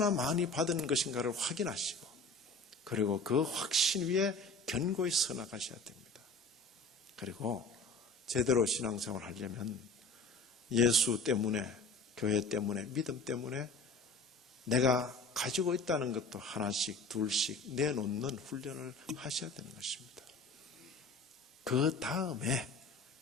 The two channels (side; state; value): right; quieter; 3.1 dB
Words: 많이 받은 것인가를 확인하시고 그리고 그 확신 위에 견고히 서 나가셔야 됩니다. 그리고 제대로 신앙생활을 하려면 예수 때문에, 교회 때문에, 믿음 때문에 내가 가지고 있다는 것도 하나씩 둘씩 내놓는 훈련을 하셔야 되는 것입니다. 그 다음에